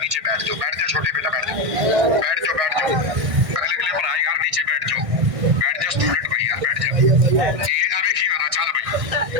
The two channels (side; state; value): left; late; 1.6 ms